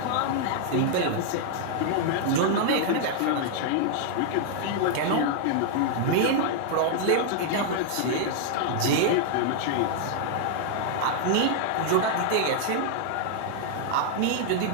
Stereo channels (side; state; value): both; different; correlation -0.01